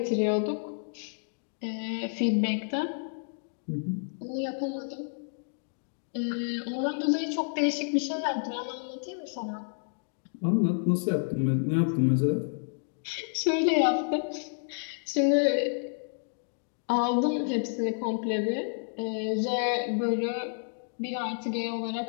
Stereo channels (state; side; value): silent; right; digital silence